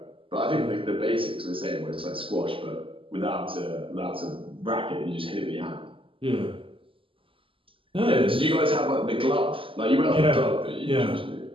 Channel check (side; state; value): left; late; 0.25 ms